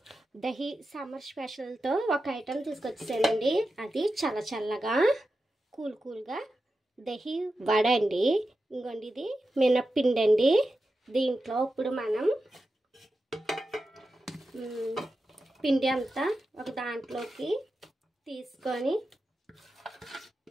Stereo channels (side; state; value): both; normal; correlation 0.91